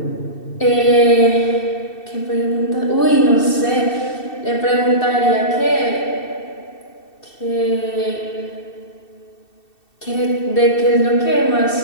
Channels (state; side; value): late; right; 2.7 ms